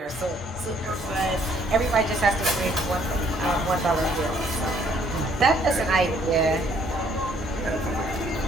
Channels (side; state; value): both; normal; correlation 0.64